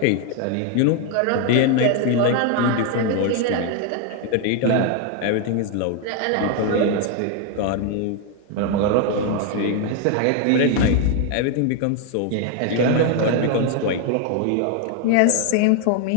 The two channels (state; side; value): different; both; correlation 0.01